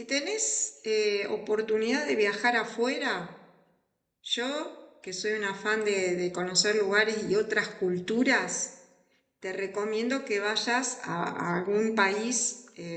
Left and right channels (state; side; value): identical; both; correlation 1.00